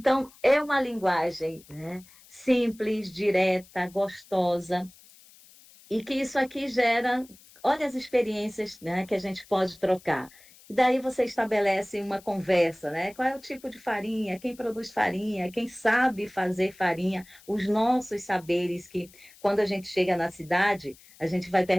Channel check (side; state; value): left; noise; hiss, 25 dB below the sound